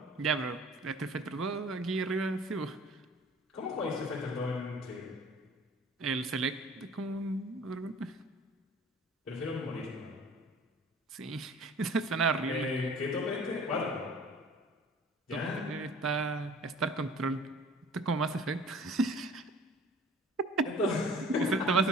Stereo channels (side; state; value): both; normal; correlation 0.48